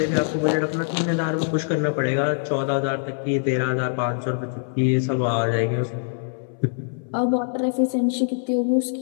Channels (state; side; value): silent; right; 62 dB below the other